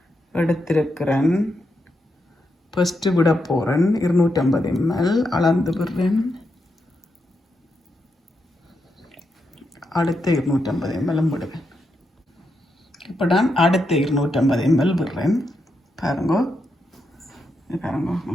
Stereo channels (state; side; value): normal; both; correlation 0.84